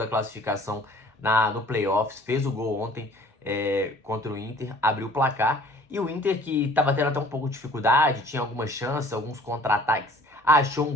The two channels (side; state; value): both; normal; correlation 0.52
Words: classificação no playoffs, fez o gol ontem contra o Inter, abriu o placar. E o Inter, que estava tendo até um pouco de dificuldade, tinha algumas chances, alguns contra-ataques, achou um